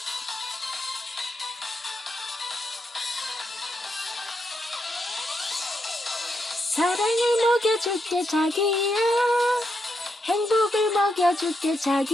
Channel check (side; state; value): both; normal; correlation 0.81